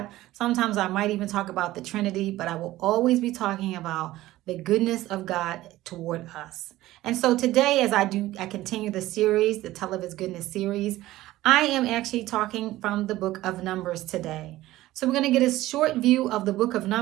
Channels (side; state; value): left; quieter; 16.3 dB